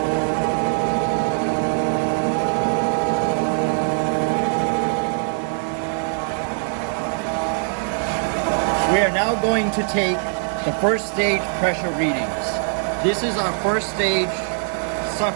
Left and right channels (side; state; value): left; silent; 62 dB below the other